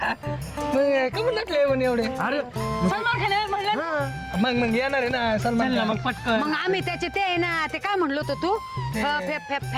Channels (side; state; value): both; identical; correlation 1.00